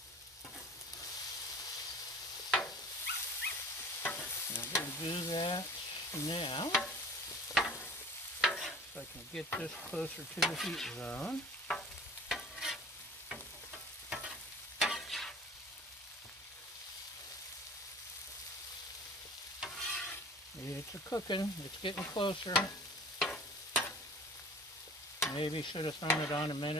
I'm going to do that now so I can get this closer to the heat zone. It's a cooking. It's getting closer. Maybe should have thrown it on a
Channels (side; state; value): both; normal; correlation 0.46